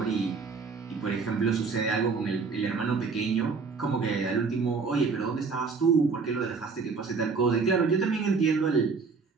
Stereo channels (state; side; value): quieter; left; 4.8 dB